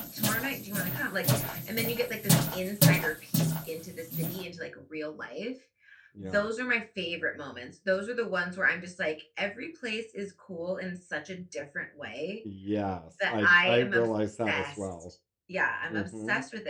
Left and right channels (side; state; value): both; identical; correlation 1.00